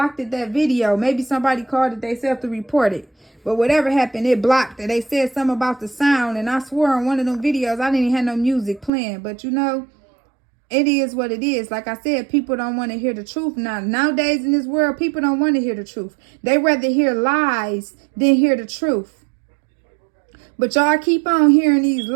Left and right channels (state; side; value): drops out; left; at 8.9 s